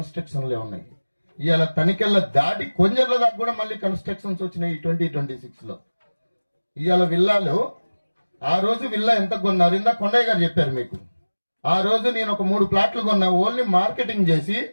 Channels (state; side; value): inverted; both; correlation -1.00